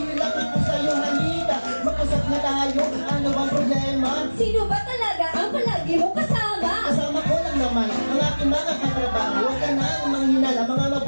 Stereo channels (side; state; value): both; inverted; correlation -1.00